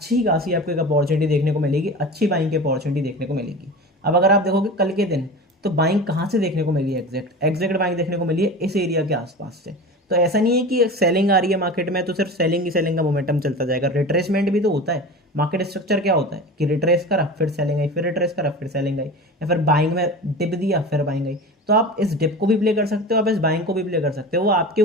खासी आपको एक अपॉर्चुनिटी देखने को मिलेगी, अच्छी बाइंग की अपॉर्चुनिटी देखने को मिलेगी। अब अगर आप देखोगे कल के दिन, तो बाइंग कहाँ से देखने को मिली है, एग्जैक्ट बाइंग देखने को मिली है इस एरिया के आसपास से। तो ऐसा नहीं है कि सेलिंग आ रही है मार्केट में तो सिर्फ सेलिंग ही सेलिंग का मोमेंटम चलता जाएगा, रिट्रेसमेंट भी तो होता है। मार्केट स्ट्रक्चर क्या होता है कि रिट्रेस करा फिर सेलिंग आई, फिर रिट्रेस करा फिर सेलिंग आई, या फिर बाइंग में डिप दिया फिर बाइंग आई। तो आप इस डिप को भी प्ले कर सकते हो, आप इस बाइंग को भी प्ले कर सकते हो, वो आपके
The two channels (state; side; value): normal; both; correlation 0.32